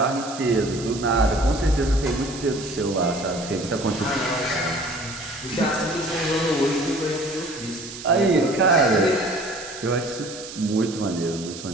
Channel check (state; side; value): noise; right; hiss, 12 dB below the sound